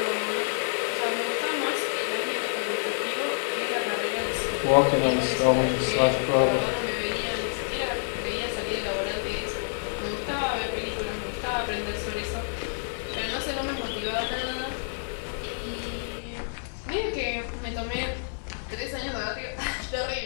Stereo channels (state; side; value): silent; right; 59 dB below the other